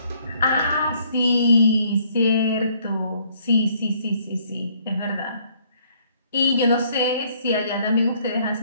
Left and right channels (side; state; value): both; inverted; correlation -0.64